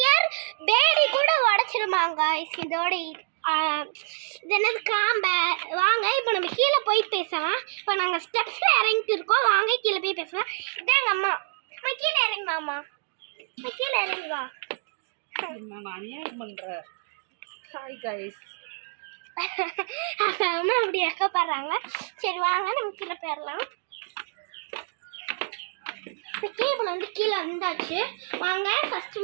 பேபி கூட உடச்சிருமாங்க காய்ஸ். இதோட இது என்னது காம்பை. வாங்க இப்போ நம்ம கீழே போய் பேசலாம். இப்போ நாங்கள் ஸ்டெப்ஸில் இறங்கிட்டு இருக்கோம். வாங்க கீழே போய் பேசலாம். இதான் எங்கள் அம்மா. அம்மா கீழே இறங்குவாம்மா. அம்மா கீழே இறங்குவா. நான் அநியாயம் பண்ணுறேன். Hi guys. அம்மா அப்படி வைக்கப்படுறாங்க. சரி வாங்க நம்ம கீழே போயிடலாம். கேபிள் வந்து கீழே வந்தாச்சு. வாங்க ஃபஸ்ட்டு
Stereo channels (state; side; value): silent; left; 60 dB below the other